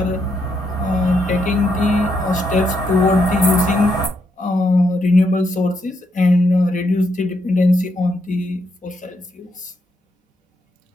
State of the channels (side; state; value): both; normal; correlation 0.78